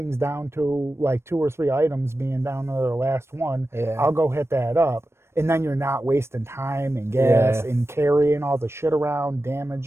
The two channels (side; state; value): left; late; 0.12 ms